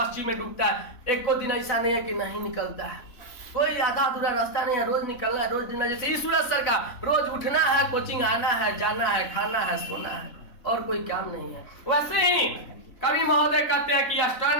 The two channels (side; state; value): right; late; 4.0 ms